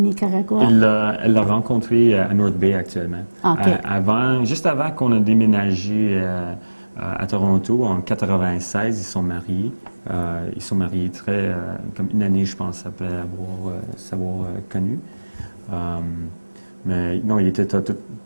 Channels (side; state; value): both; inverted; correlation -1.00